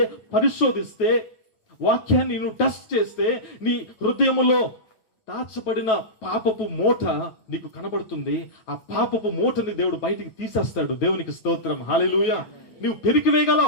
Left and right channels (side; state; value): right; late; 9.2 ms